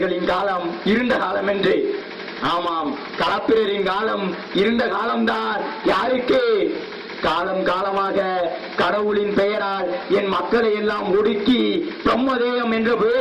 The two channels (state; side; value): identical; both; correlation 1.00